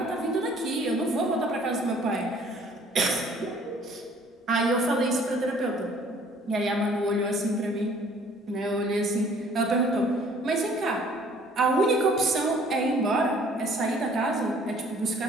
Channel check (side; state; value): both; normal; correlation 0.56